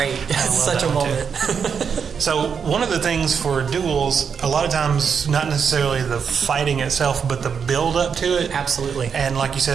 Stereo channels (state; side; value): quieter; left; 6.6 dB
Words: It's such a moment. So one of the things for duels, a lot of times, not necessarily the fighting itself, but the build up to it. Absolutely. And like you